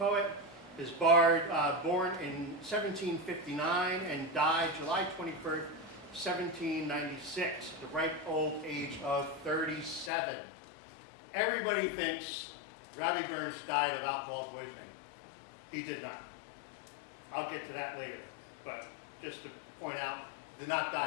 His bard, born in 1759 and died July 21st, 1796, the ripe old age of 37. Everybody thinks Robbie Burns died of alcohol poisoning. He did not. I'll get to that later, but just to point out, did not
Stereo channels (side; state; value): right; drops out; at 10.1 s